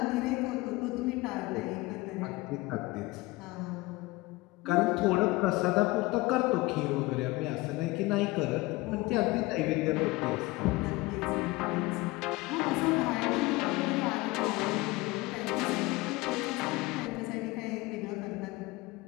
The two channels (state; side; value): quieter; right; 21.1 dB